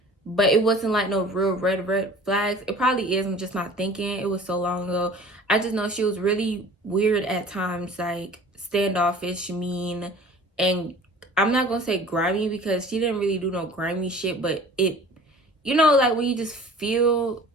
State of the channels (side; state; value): both; normal; correlation 0.45